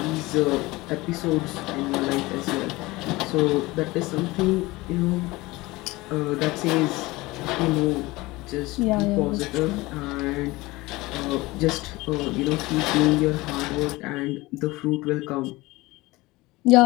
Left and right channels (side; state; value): right; quieter; 20.9 dB